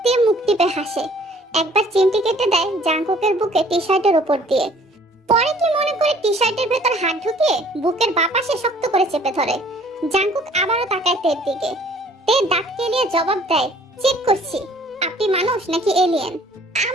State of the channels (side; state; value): both; normal; correlation 0.56